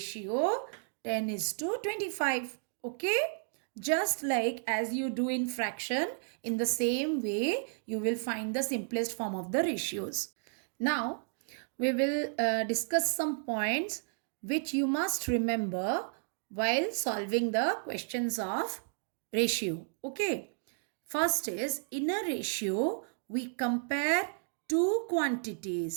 10:25. Okay? Just like as you do in fraction, in the same way you will find the simplest form of the ratios. Now we will discuss some points which you must remember while solving the questions of ratio. Okay. First is, in a ratio we compare two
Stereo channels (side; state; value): left; silent; digital silence